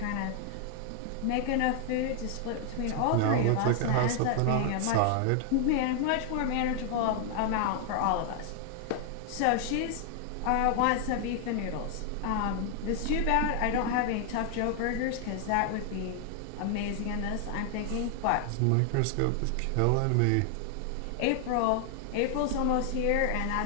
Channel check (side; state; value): both; different; correlation 0.00